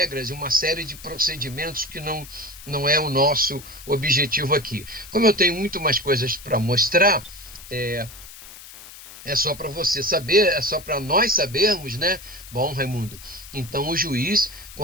e uma série de procedimentos que não é o nosso objetivo aqui. Como eu tenho muito mais coisas para mostrar, é só para você saber, é só para nós sabermos, né? Bom, Raimundo, então o juiz,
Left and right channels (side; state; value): left; noise; hiss, 17 dB below the sound